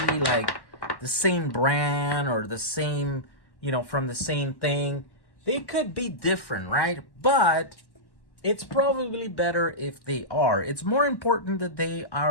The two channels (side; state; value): right; late; 1.1 ms